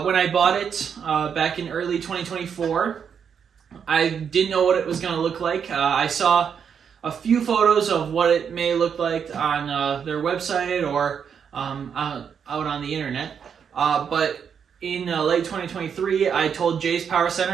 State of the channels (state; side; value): quieter; left; 7.3 dB